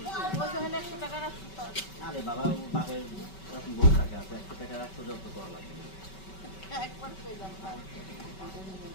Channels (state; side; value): late; right; 5.2 ms